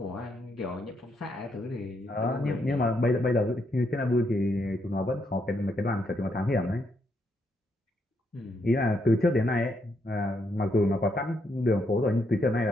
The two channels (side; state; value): both; normal; correlation 0.77